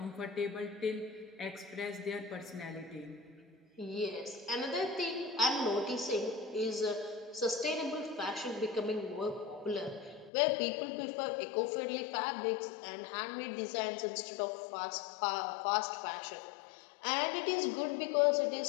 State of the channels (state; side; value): drops out; right; at 10.3 s